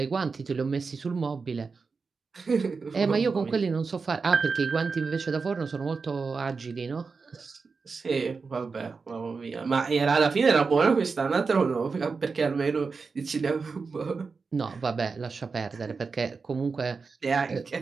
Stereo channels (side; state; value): left; quieter; 4.7 dB